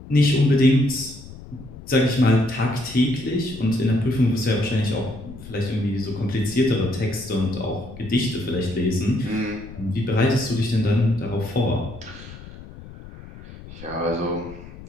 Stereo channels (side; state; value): left; noise; rumble, 16 dB below the sound